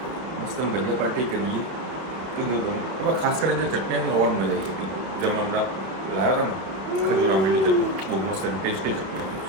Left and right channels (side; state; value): left; late; 31 ms